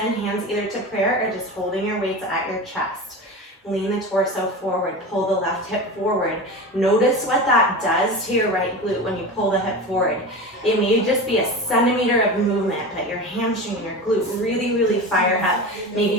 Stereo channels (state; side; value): normal; both; correlation 0.28